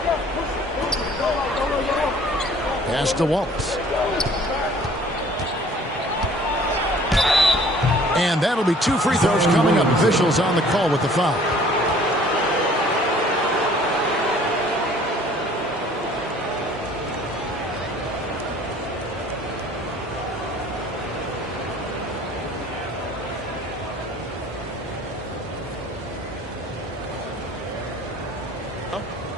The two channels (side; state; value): both; normal; correlation 0.53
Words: Pass to Wallace. And that'll be 2 free throws coming up. Officials on the call with the foul.